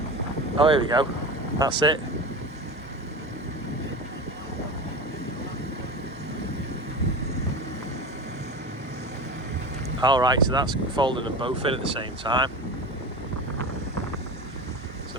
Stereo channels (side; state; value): both; normal; correlation 0.28